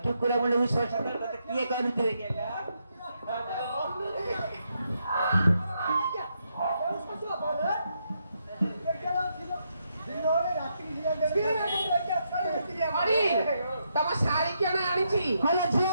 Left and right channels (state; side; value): inverted; both; correlation -0.79